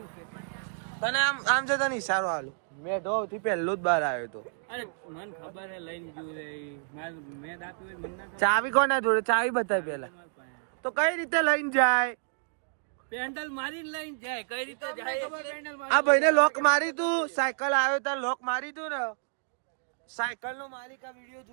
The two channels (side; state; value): left; silent; digital silence